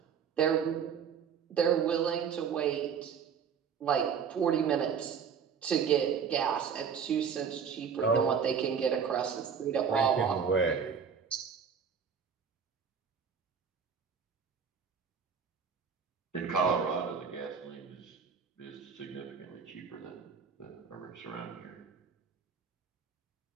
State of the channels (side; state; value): left; quieter; 6.8 dB